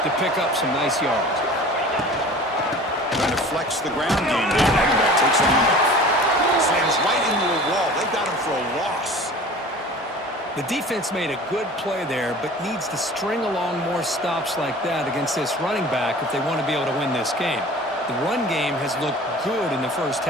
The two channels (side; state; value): both; normal; correlation 0.42